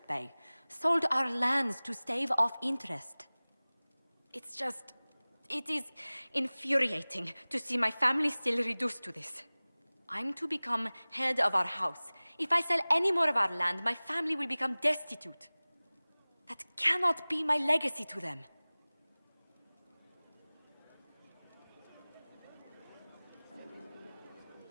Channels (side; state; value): both; inverted; correlation -1.00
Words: bay. Sold our lands to stave off interest. It is infuriating to see my family still reduced to this. I'm to become head of our house. If I sell any more of our land, my family will become destitute. That cannot be my legacy to them.